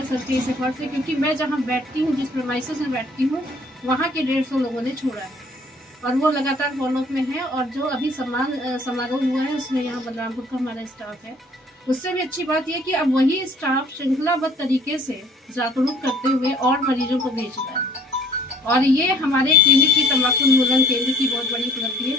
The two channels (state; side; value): normal; both; correlation 0.57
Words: सर के इस एफर्ट से, क्योंकि मैं जहाँ बैठती हूँ, जिस प्रेमाइसेस में बैठती हूँ, वहाँ के 150 लोगों ने छोड़ा है और वो लगातार फॉलोअप में है। और जो अभी सम्मान समारोह हुआ है उसमें यहाँ बलरामपुर का हमारा स्टाफ है। उससे भी अच्छी बात यह कि अब वही स्टाफ श्रृंखलाबद्ध तरीके से जागरूक करते हुए और मरीजों को भेज रहा है। और ये हमारे क्लिनिक की तंबाकू उन्मूलन केंद्र की बहुत बड़ी उपलब्धि है,